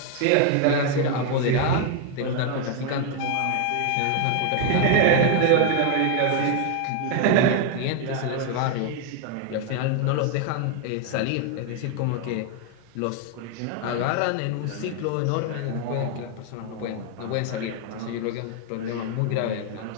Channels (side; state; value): both; different; correlation 0.01